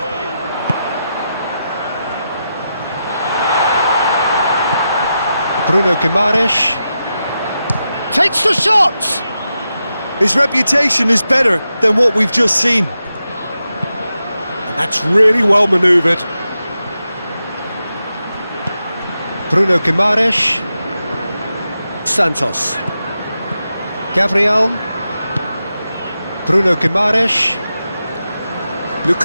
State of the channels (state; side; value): inverted; both; correlation -0.89